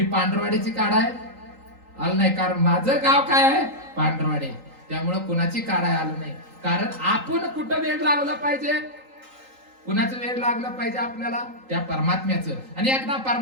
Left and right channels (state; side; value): late; left; 3.8 ms